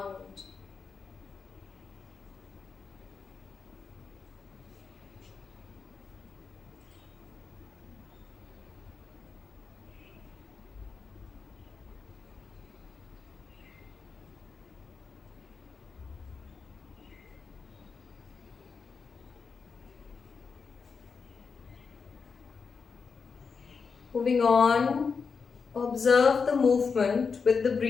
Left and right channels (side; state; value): right; quieter; 5.4 dB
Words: Moving on, observe the movement with the